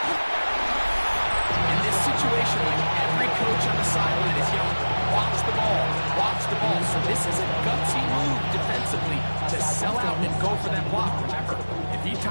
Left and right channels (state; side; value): inverted; both; correlation -1.00